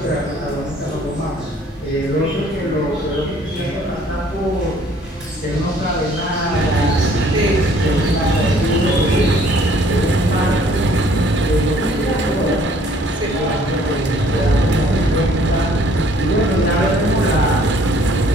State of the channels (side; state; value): both; normal; correlation 0.58